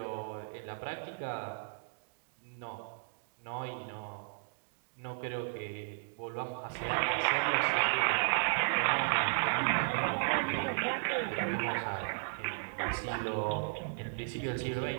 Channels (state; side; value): silent; left; digital silence